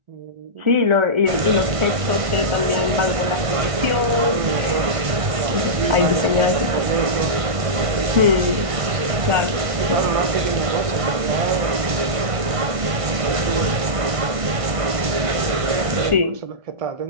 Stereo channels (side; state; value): left; late; 1.5 ms